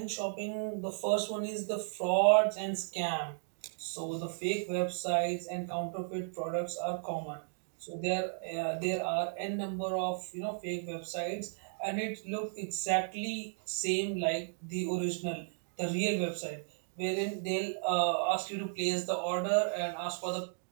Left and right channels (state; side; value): silent; left; digital silence